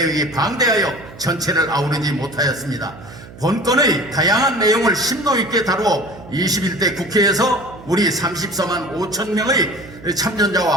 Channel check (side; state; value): right; noise; hum, 18 dB below the sound